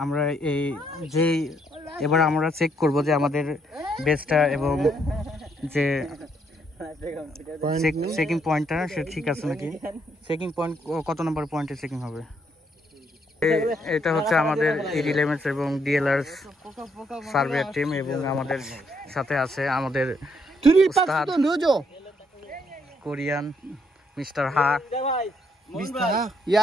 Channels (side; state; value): both; normal; correlation 0.73